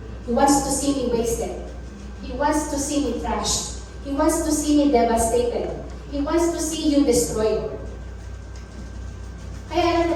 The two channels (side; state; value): both; identical; correlation 1.00